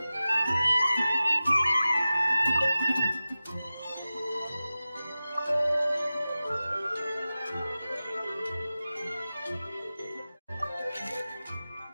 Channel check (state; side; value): inverted; both; correlation -0.96